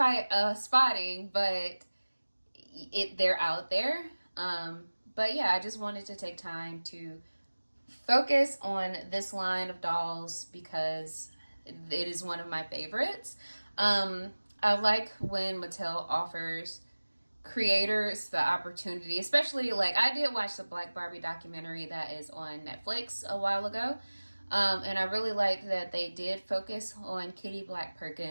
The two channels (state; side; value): inverted; both; correlation -1.00